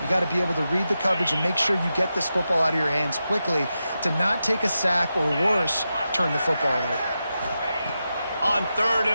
You got to be able to read the coverage and make sure you get this football out of your hands quickly to not take a sack or worse, turn the football over. On 3rd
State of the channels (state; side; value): inverted; both; correlation -0.90